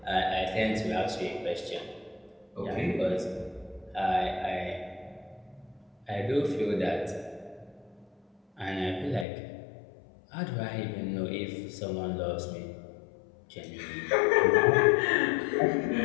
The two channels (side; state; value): right; drops out; at 9.2 s